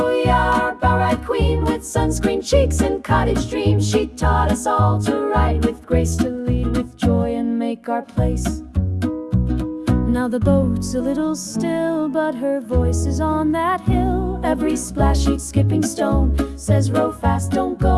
yeah, our bow ride queen, with sunscreen cheeks and cottage dreams. She taught us all to ride with grace, to lead with joy and make our place. Now the boat's a little still, but her voice is on that hill. Every splash she'd skipping stone says row fast, don't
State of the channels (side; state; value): both; identical; correlation 1.00